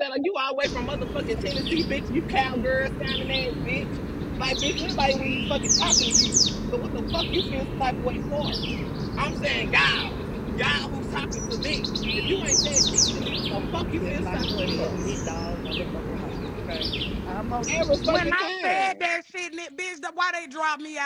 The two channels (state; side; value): identical; both; correlation 1.00